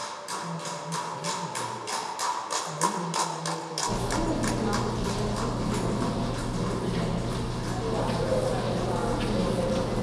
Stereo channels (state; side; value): identical; both; correlation 1.00